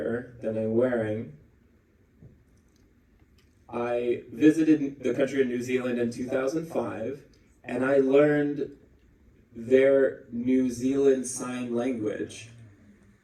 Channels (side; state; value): both; identical; correlation 1.00